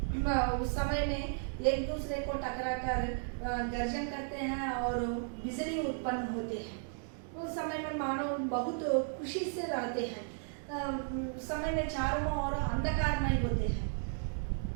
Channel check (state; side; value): silent; left; 55 dB below the other